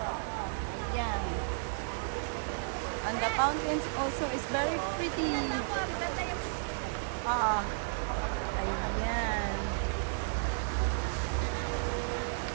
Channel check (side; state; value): left; silent; 56 dB below the other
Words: Ayan. And the fountains also is very pretty. Ayan.